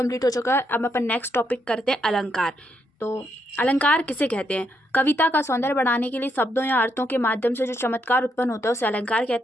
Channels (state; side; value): normal; both; correlation 0.78